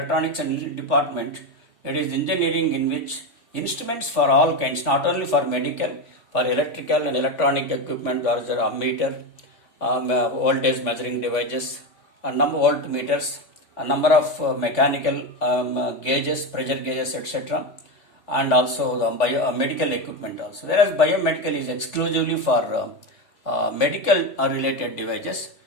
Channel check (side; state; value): right; late; 3.5 ms